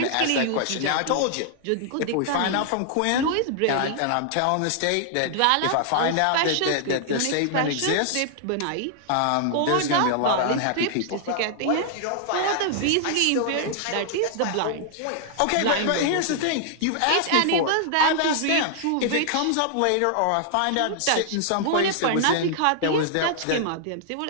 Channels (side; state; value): both; different; correlation -0.01